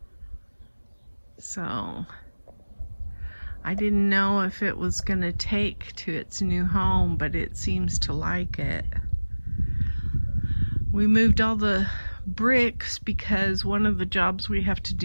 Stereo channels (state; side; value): inverted; both; correlation -1.00